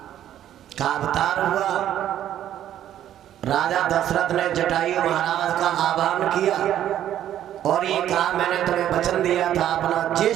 का अवतार हुआ। राजा दशरथ ने जटायु महाराज का आह्वान किया और ये कहा, मैंने तुम्हें वचन दिया था अपना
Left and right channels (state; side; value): quieter; left; 11.4 dB